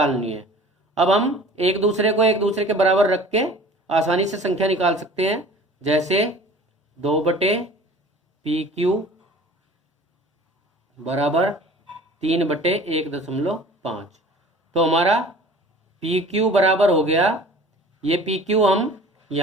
है। अब हम एक दूसरे के बराबर रख के आसानी से संख्या निकाल सकते हैं, जैसे 2/पी बराबर 3/1.5। तो हमारा पी क्यू बराबर हो गया, ये पी क्यू हम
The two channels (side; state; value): both; normal; correlation 0.45